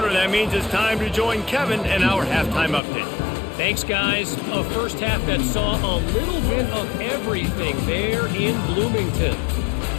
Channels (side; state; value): right; drops out; at 2.8 s